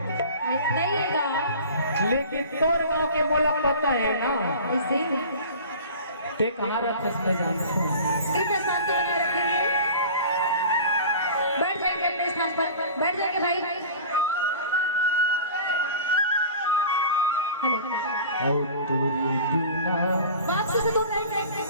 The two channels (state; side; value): inverted; both; correlation -0.39